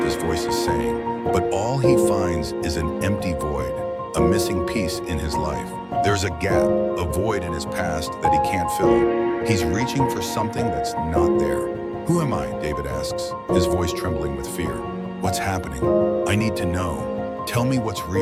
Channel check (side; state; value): both; identical; correlation 1.00